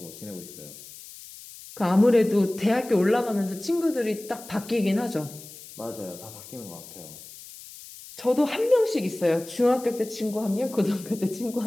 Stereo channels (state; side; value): noise; left; hiss, 16 dB below the sound